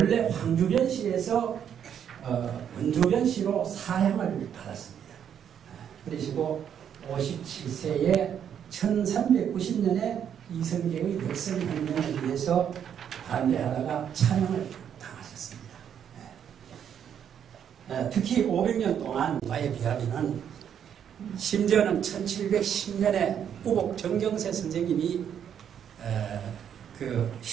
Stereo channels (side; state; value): left; quieter; 8.8 dB